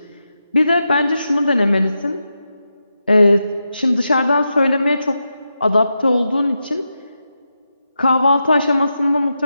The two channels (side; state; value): both; inverted; correlation -0.88